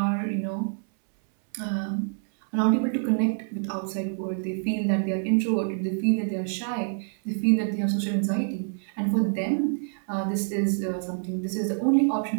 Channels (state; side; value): silent; left; 60 dB below the other